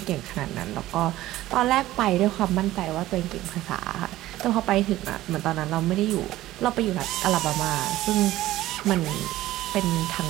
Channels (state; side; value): quieter; left; 15.6 dB